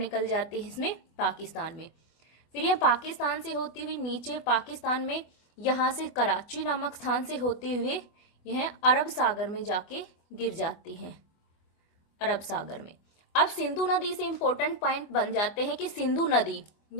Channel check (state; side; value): late; right; 24 ms